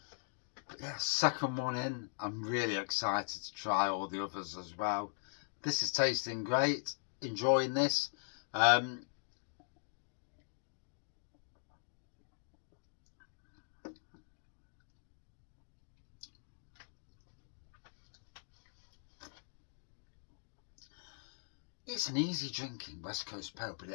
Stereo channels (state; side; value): silent; right; digital silence